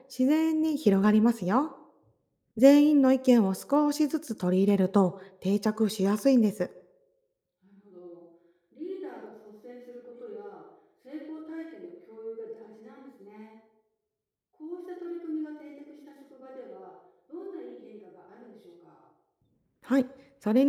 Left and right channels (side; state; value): both; identical; correlation 1.00